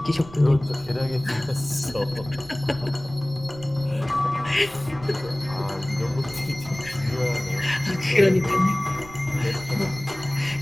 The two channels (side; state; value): right; noise; rumble, 17 dB below the sound